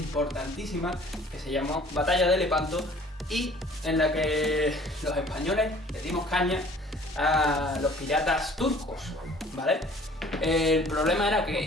que se llamó Batalla de Lepanto y en la que los españoles le dimos caña a los piratas turcos, ¿vale? El problema era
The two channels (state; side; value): normal; both; correlation 0.52